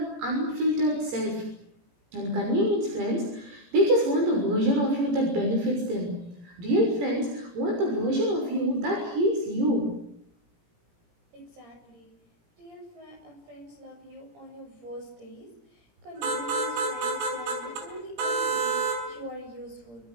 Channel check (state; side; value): late; left; 17 ms